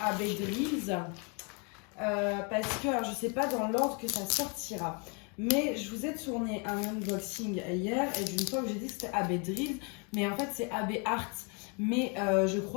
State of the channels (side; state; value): right; quieter; 35.2 dB